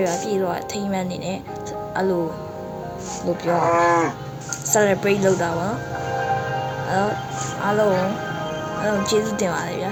ပြည့်တော့ထိမှန်းနေတယ်အဲ့လိုလို့ပြော celebrate လုပ်တာပါအားလုံးကျေးဇူးတင်ပါတယ်ဗျာ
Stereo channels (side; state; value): both; identical; correlation 1.00